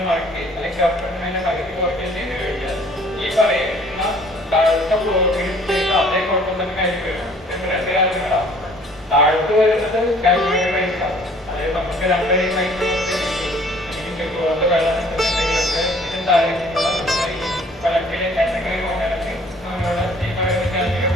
മാറ്റി അല്ലെങ്കിൽ കർവിനെ പകുതി കുറയ്ക്കാൻ ചെയ്ത് കഴിഞ്ഞാൽ ഈ പറയുന്ന താഴത്തെ ഫ്ലോറിൽ ചെയ്ത് അതേ കുഴപ്പം തന്നെ കാര്യം വരും. രണ്ട് കാര്യങ്ങളാണ്. താഴത്ത് വരുന്നത് കാൽക്കുലേറ്റർ പൈസ. അതായത് നമുക്ക് 2 മൈക്രോ വെള്ളം കിട്ടുന്നുണ്ടെങ്കിലൊക്കെ ഇതിന് താഴേക്കുള്ള പലക്കിലെ എന്തെങ്കിലും കൊണ്ടാണെങ്കിൽ നമ്മളുടെ ഈ പറയുന്ന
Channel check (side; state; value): both; normal; correlation 0.56